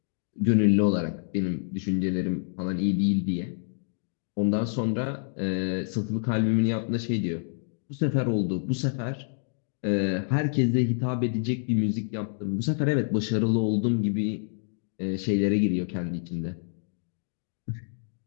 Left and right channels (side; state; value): right; silent; digital silence